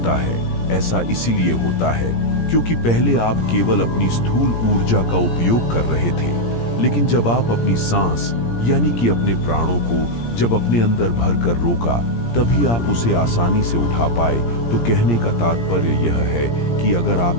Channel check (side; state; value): right; late; 17 ms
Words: है? ऐसा इसीलिए होता है क्योंकि पहले आप केवल अपनी स्थूल ऊर्जा का उपयोग कर रहे थे, लेकिन जब आप अपनी सांस यानी कि अपने प्राणों को जब अपने अंदर भरकर रोका, तभी आप उसे आसानी से उठा पाए। तो कहने का तात्पर्य यह है कि अगर